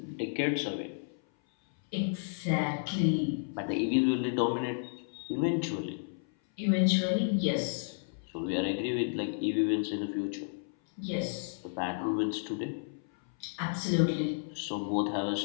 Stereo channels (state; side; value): silent; right; 56 dB below the other